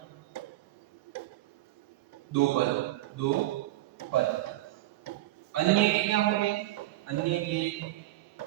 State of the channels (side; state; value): left; quieter; 16.4 dB